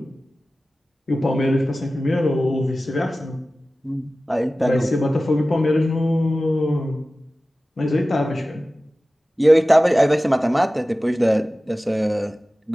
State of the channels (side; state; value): both; normal; correlation 0.96